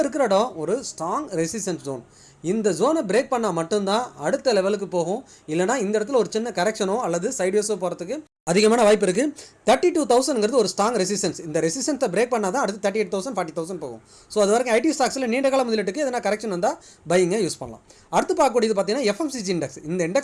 இருக்கிற இடம் ஒரு ஸ்ட்ராங் ரெசிஸ்டன்ஸ் ஜோன். இந்த ஜோனை பிரேக் பண்ணால் மட்டும்தான் அடுத்த லெவலுக்கு போகும். இல்லைனா இந்த இடத்துல ஒரு சின்ன கரெக்ஷனோ அல்லது சைட்வேஸோ போகிறதுக்கு அதிகமான வாய்ப்பு இருக்குது. 32,000ங்கிறது ஒரு ஸ்ட்ராங் ரெசிஸ்டன்ஸ். இந்த ரெசிஸ்டன்ஸை பிரேக் பண்ணால் தான் அடுத்து 38,000 40,000 போகும். ஸோ அது வரைக்கும் ஐடி ஸ்டாக்ஸில் நீண்ட கால முதலீட்டுக்கு எதனா கரெக்ஷன் வந்தால் பையிங்க யூஸ் பண்ணலாம். அடுத்து பார்க்கக்கூடியது பார்த்தீங்கன்னா எஃப்எம்சிஜி இண்டெக்ஸ். இந்த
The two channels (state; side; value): identical; both; correlation 1.00